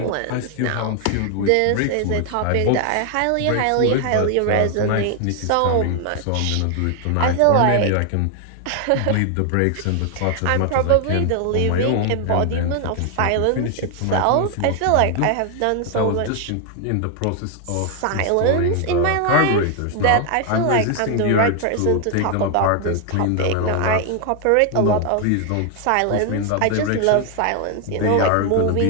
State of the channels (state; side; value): different; both; correlation 0.00